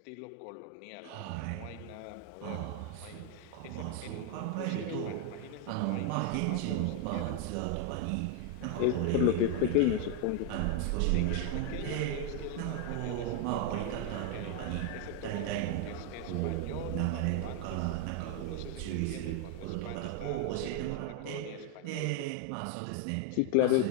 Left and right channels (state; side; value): different; both; correlation 0.00